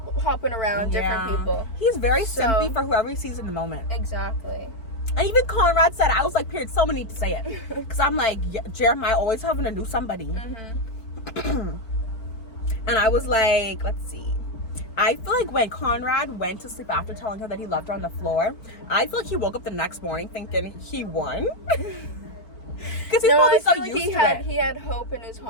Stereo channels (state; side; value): late; right; 4.5 ms